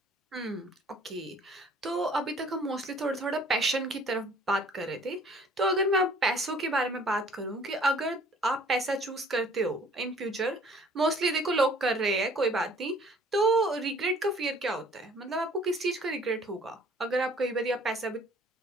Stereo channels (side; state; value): both; normal; correlation 0.55